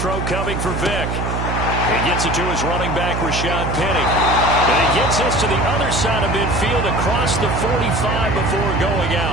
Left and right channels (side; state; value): right; noise; hum, 2 dB below the sound